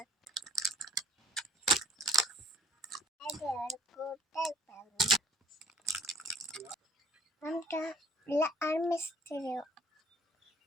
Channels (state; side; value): normal; both; correlation 0.56